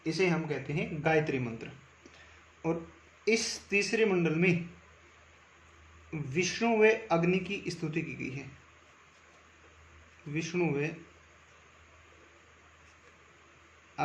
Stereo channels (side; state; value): both; identical; correlation 1.00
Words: इसे हम कहते हैं गायत्री मंत्र। और इस तीसरे मंडल में विष्णु व अग्नि की स्तुति की गई है। विष्णु व